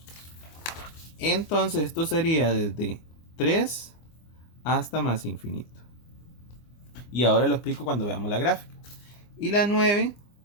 Entonces esto sería desde 3 hasta más infinito. Y ahora lo explico cuando veamos la gráfica. Y la 9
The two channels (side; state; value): right; late; 25 ms